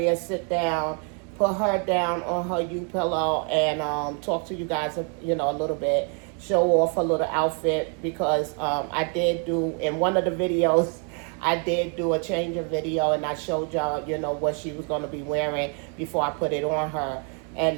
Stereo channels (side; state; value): left; quieter; 39.2 dB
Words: sit down, put her down on her U-pillow, and talk to you guys, you know, a little bit, show off her little outfit, because I did do, in one of the videos, I did do a change of video, and I showed y'all, you know, what she was going to be wearing before I put it on her.